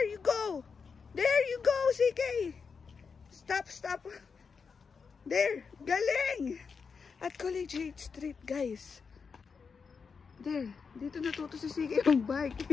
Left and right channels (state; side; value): quieter; right; 5.5 dB